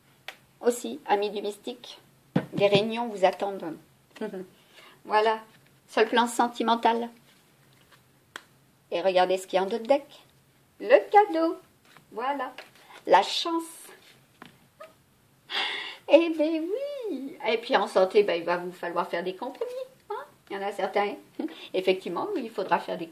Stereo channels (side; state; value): both; identical; correlation 1.00